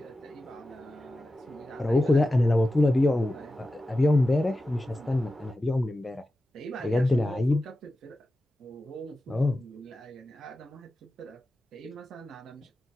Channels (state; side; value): normal; both; correlation 0.93